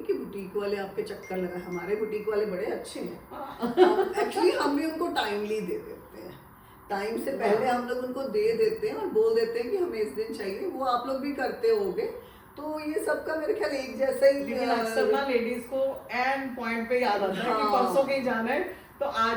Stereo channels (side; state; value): both; identical; correlation 1.00